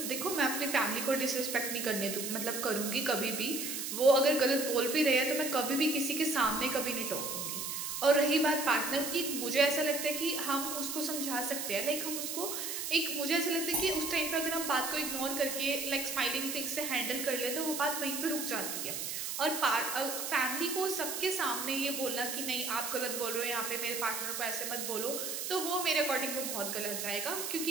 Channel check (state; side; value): noise; right; hiss, 4 dB below the sound